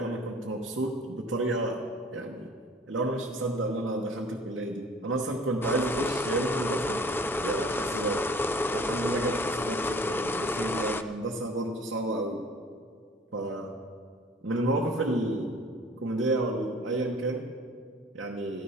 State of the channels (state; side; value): normal; both; correlation 0.49